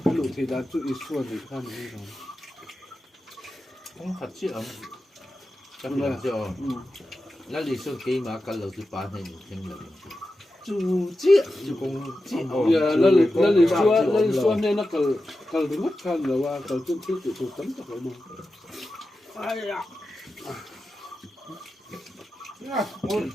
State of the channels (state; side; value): normal; both; correlation 0.92